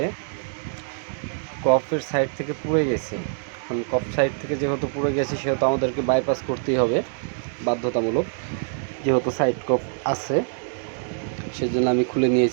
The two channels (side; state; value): left; silent; digital silence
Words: কফের সাইড থেকে পুড়ে গেছে। এখন কফ সাইড থেকে যেহেতু পুড়ে গেছে সেহেতু আমাদেরকে বাইপাস করতেই হবে বাধ্যতামূলক, যেহেতু সাইড কফ আছে। সেজন্য আমি খুলে